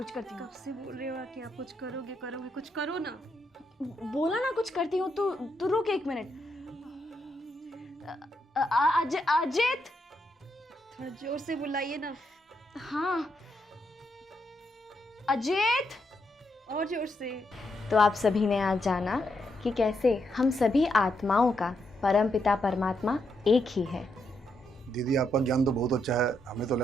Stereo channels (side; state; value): both; normal; correlation 0.80